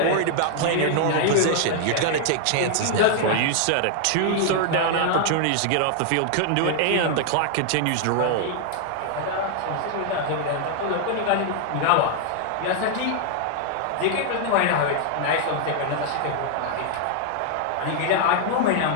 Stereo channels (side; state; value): both; different; correlation 0.00